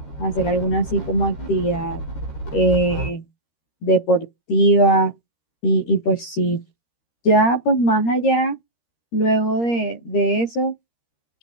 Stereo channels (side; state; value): right; late; 13 ms